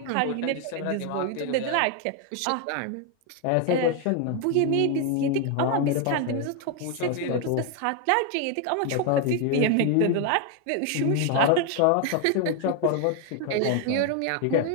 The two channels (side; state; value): both; different; correlation 0.01